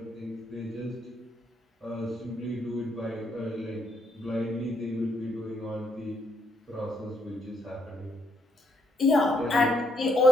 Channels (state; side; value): normal; both; correlation 0.73